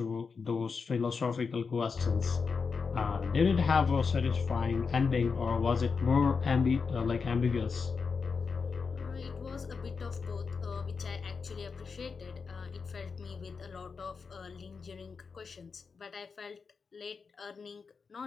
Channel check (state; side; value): quieter; right; 5.2 dB